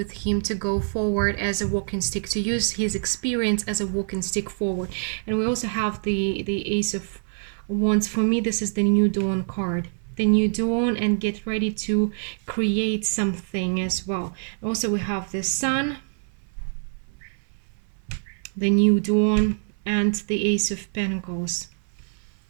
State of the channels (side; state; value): left; silent; 57 dB below the other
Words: him to go forward as a walking stick, to use his experience as a walking stick forward. And we also have the Ace of Wands. For me, this is the New Dawn card. The new dawn, and get ready to create something as well. Also, we have the Sun, the new dawn, and the Ace of Pentacles.